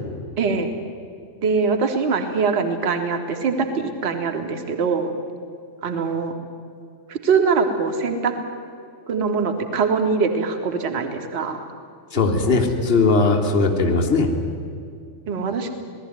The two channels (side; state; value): left; late; 2.9 ms